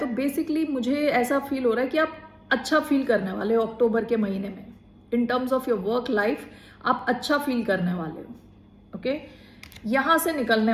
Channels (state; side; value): identical; both; correlation 1.00